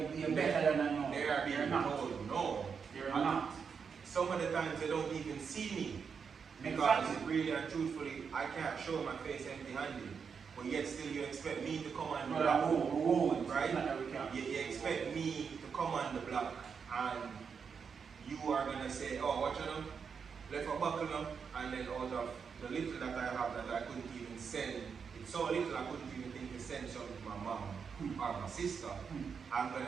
you're better than I know. They are being told no. They're not. Some of the times they don't even see me. Because really and truthfully, I can't show my face empty-handed. But yet still you expect me to come on the block. Right? You expect me to come on the block and you are going to say, oh, watch out, left a buckle up, and then out of the little that I have that I couldn't even send, it's so little I couldn't even think to send something to my mom or my sister, I'm going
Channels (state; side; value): quieter; left; 6.2 dB